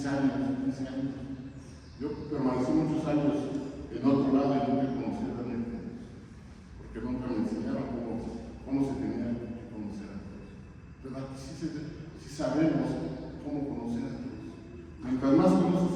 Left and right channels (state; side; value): identical; both; correlation 1.00